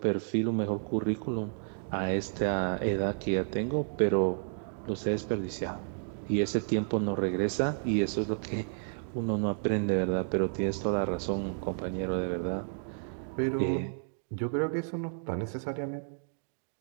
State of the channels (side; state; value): left; silent; digital silence